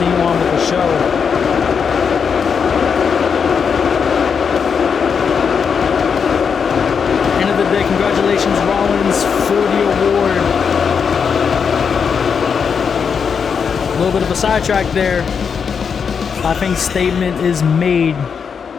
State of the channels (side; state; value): right; quieter; 6.4 dB